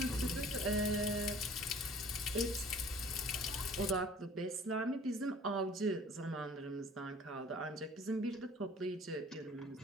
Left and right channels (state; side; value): normal; both; correlation 0.50